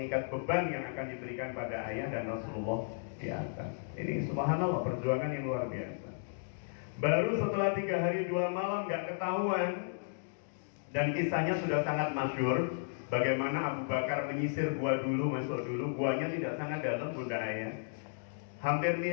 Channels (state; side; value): silent; right; digital silence